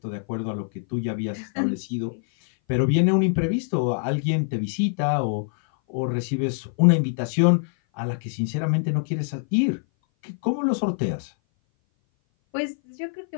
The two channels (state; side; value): silent; right; 58 dB below the other